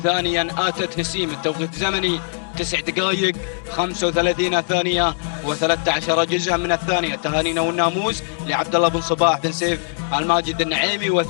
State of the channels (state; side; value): silent; right; digital silence